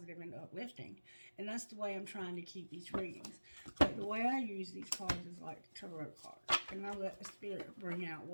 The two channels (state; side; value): inverted; both; correlation -1.00